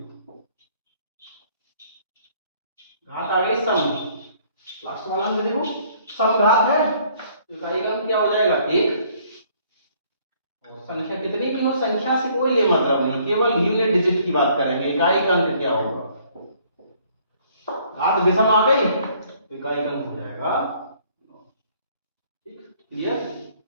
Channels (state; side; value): inverted; both; correlation -0.62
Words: घात आ गई सम, लास्ट वाला में देखो सम घात है तो इकाई का अंक क्या हो जाएगा, 1। और संख्या कितनी भी हो, संख्या से कोई ले मतलब नहीं, केवल यूनिट डिजिट की बात करेंगे, इकाई का अंक क्या होगा, घात विषम आ गई तो इकाई का अंक हो जाएगा 9। ठीक, क्लियर,